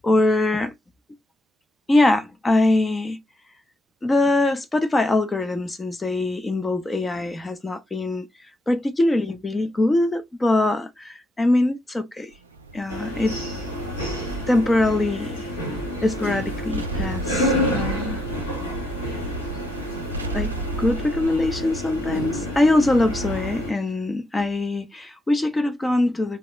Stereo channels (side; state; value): both; normal; correlation 0.80